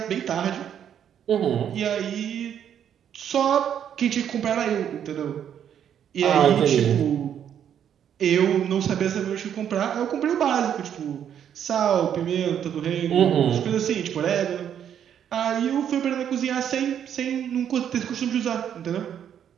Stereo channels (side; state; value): left; quieter; 9.2 dB